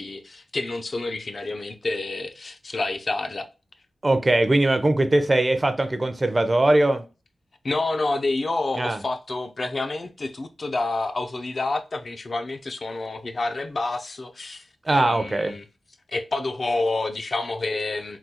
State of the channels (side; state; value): both; normal; correlation 0.95